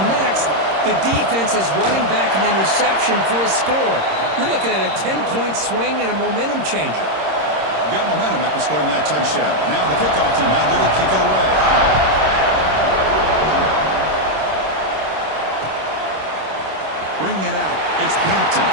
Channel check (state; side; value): late; left; 26 ms